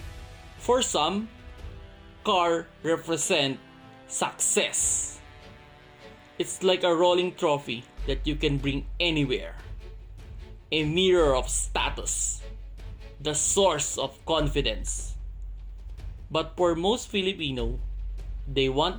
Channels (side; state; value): both; identical; correlation 1.00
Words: For some, car represent success. It's like a rolling trophy that you can bring anywhere. A mirror of status. The source of confidence. But for most Filipino, they